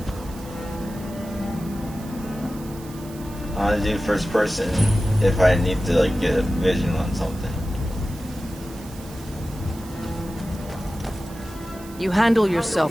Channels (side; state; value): right; noise; hiss, 19 dB below the sound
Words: I want to do first person if I need to like get a vision on something. You handle